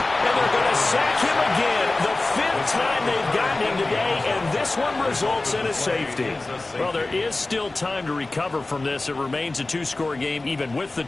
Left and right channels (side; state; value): right; quieter; 3.1 dB